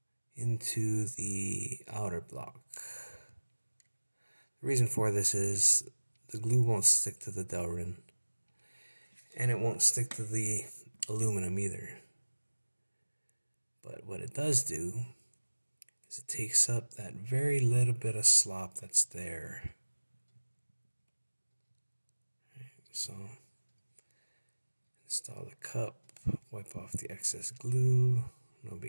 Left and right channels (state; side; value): inverted; both; correlation -1.00